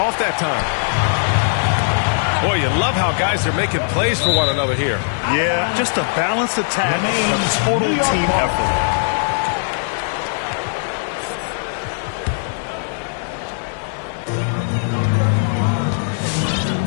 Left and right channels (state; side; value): silent; right; digital silence